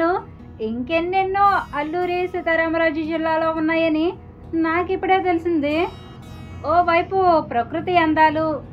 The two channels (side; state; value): both; identical; correlation 1.00